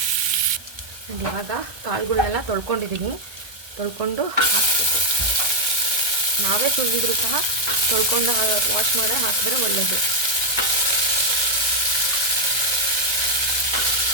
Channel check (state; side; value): late; left; 1.3 ms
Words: ಇವಾಗ ಕಾಳುಗಳನ್ನೆಲ್ಲ ತೊಳ್ಕೊಂಡು ಹಾಕಬೇಕು. ನಾವೇ ತುಳಿದ್ರು ಸಹ ತೊಳ್ಕೊಂಡು ವಾಶ್ ಮಾಡಿ ಹಾಕಿದ್ರೆ ಒಳ್ಳೆಯದು.